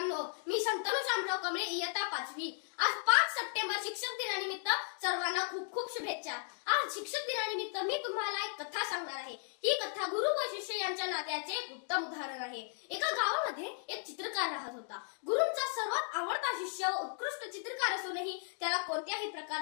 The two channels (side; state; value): right; silent; 54 dB below the other